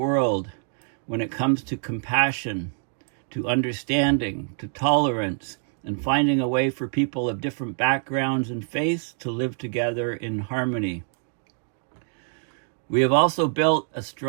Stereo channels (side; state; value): left; silent; 61 dB below the other